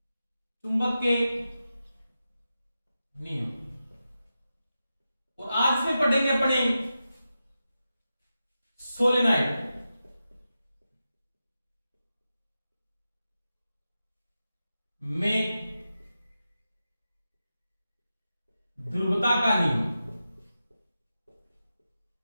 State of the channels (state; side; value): inverted; both; correlation -0.91